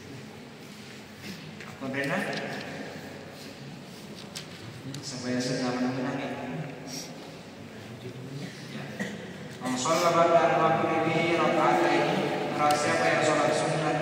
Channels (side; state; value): both; identical; correlation 1.00